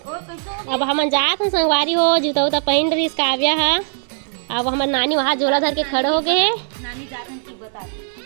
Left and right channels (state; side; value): silent; left; 66 dB below the other